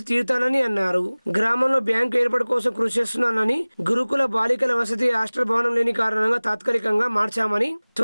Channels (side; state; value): both; inverted; correlation -1.00